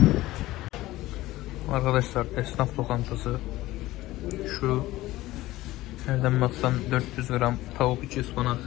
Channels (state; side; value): quieter; right; 17.1 dB